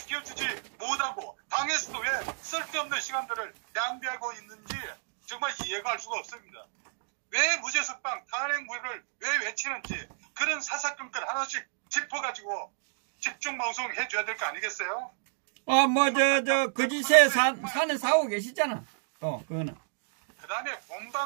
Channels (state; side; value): silent; left; digital silence